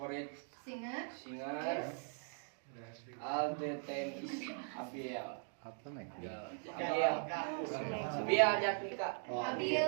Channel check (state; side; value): silent; left; 51 dB below the other